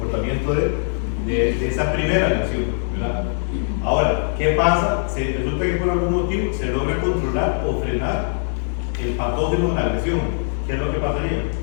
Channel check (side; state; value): right; silent; 65 dB below the other